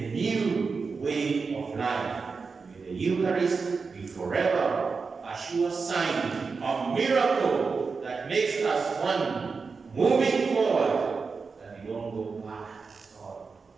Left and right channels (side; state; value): left; quieter; 4.8 dB